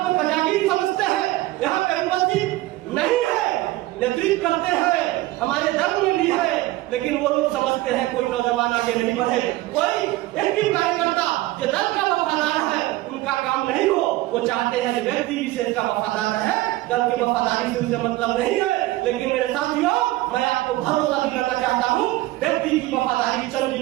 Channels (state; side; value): quieter; left; 17.8 dB